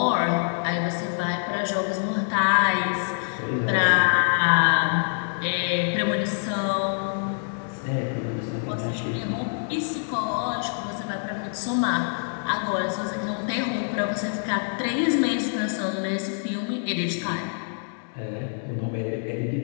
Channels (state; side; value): silent; right; digital silence